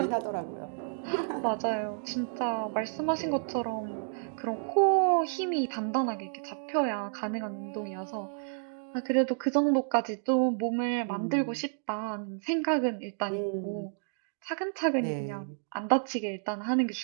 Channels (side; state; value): left; silent; digital silence